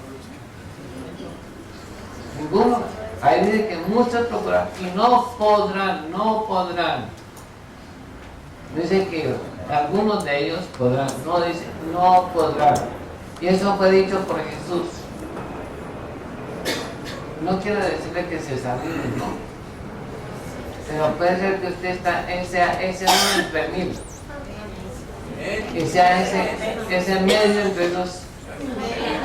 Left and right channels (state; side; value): identical; both; correlation 1.00